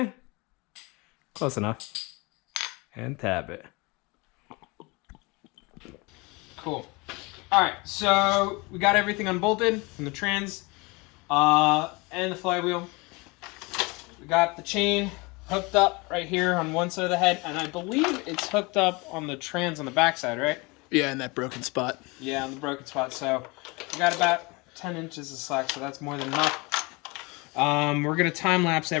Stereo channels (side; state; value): right; quieter; 26.5 dB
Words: Close enough. And tab it. Cool. Alright, so we got everything unbolted from the trans and the flywheel. We got the chain hooked up right here on one side of the head, and I believe it's hooked up on the trans on the backside, right? Yeah, in that broken spot. Yeah, on the broken spot. So we got about 10 inches of slack, so that's more than enough. We're going to time-lapse